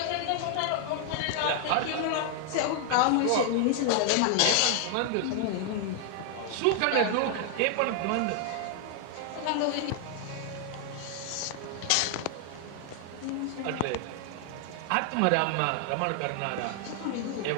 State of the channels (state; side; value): different; both; correlation 0.00